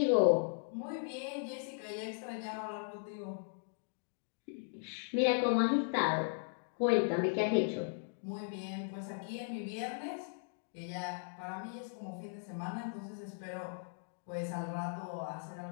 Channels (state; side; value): silent; right; digital silence